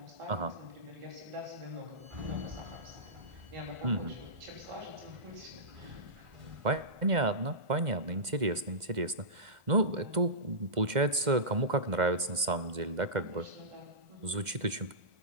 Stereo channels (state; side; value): late; left; 2.1 ms